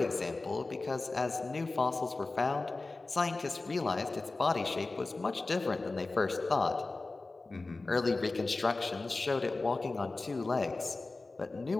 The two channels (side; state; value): right; quieter; 3.4 dB